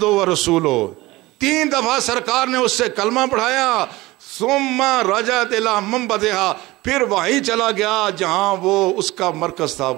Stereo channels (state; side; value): quieter; left; 19.8 dB